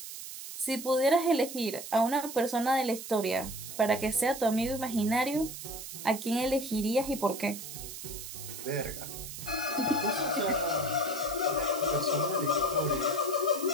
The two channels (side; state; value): right; noise; hiss, 10 dB below the sound